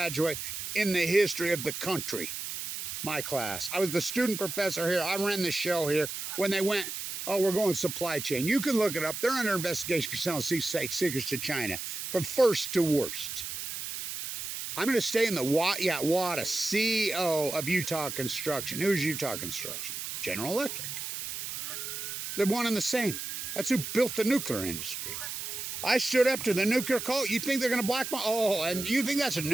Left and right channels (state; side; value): noise; right; hiss, 6 dB below the sound